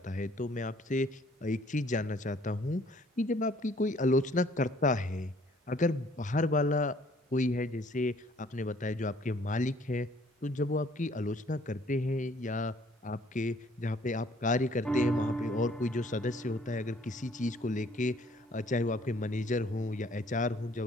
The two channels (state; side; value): normal; both; correlation 0.59